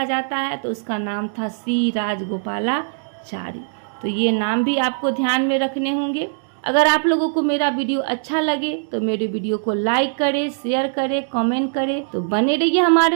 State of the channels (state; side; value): silent; left; digital silence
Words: जाता है तो उसका नाम था सी राजगोपालाचारी। तो ये नाम भी आपको ध्यान में रखने होंगे। अगर आप लोगों को मेरा वीडियो अच्छा लगे तो मेरे वीडियो को लाइक करें, शेयर करें, कमेंट करें। तो बने रहिए